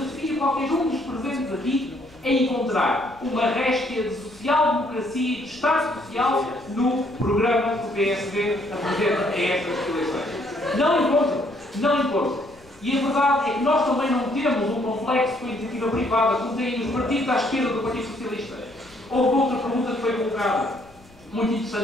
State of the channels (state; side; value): noise; left; rumble, 27 dB below the sound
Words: qualquer um dos presentes aqui a encontrar uma réstia de social-democracia e de Estado Social no programa que o PSD apresenta a estas eleições. Não encontro. E a verdade é que nós também não temos um complexo com a iniciativa privada, como têm os partidos à esquerda do Partido Socialista. Houve outra pergunta que foi colocada, muito